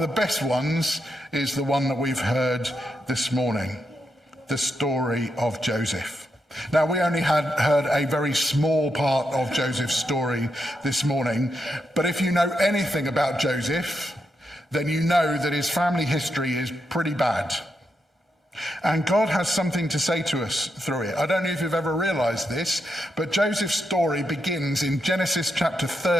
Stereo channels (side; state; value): both; normal; correlation 0.83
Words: the best ones is the one that we've heard this morning, the story of Joseph. Now, we only heard a very small part of Joseph's story this morning, but if you know anything about Joseph, then you know that his family history is pretty bad. And God has something to say to us through it. I don't know if you've ever realized this, but Joseph's story begins in Genesis chapter